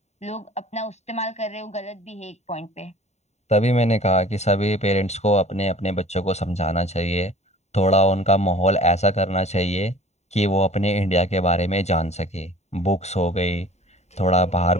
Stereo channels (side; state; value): right; late; 0.32 ms